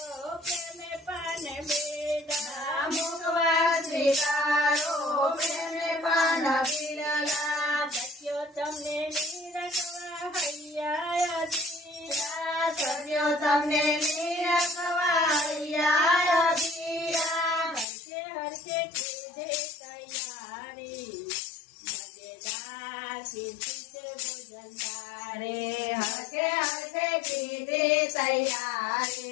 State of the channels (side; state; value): right; drops out; at 17.9 s